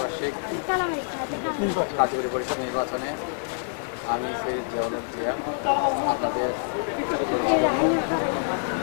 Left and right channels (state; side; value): silent; right; digital silence